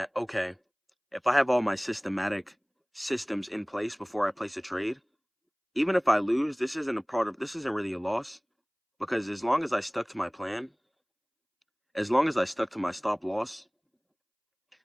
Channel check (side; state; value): both; identical; correlation 1.00